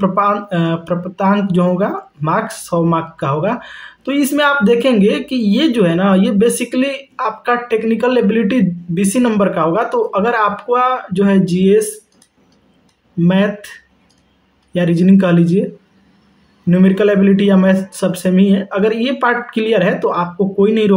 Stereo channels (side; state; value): both; identical; correlation 1.00